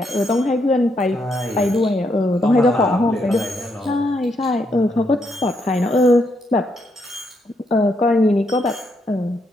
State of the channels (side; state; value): both; normal; correlation 0.77